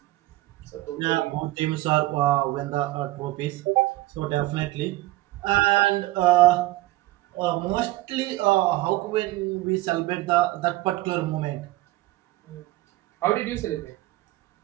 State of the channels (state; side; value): quieter; left; 18.1 dB